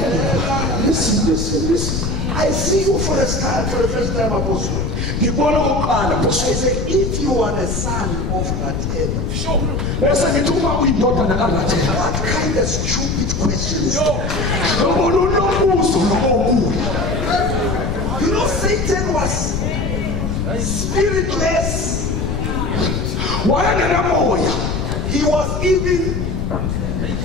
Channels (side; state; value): left; noise; rumble, 2 dB below the sound